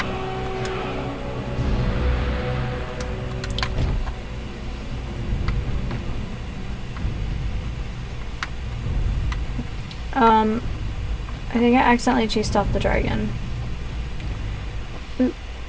I think I accidentally chased off the dragon. Oops.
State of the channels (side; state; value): both; identical; correlation 1.00